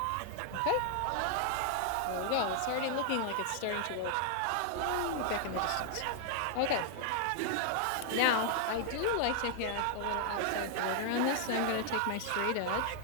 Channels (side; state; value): both; different; correlation 0.00